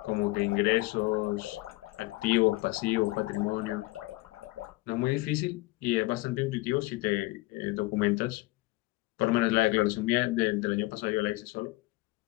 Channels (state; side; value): quieter; right; 21.4 dB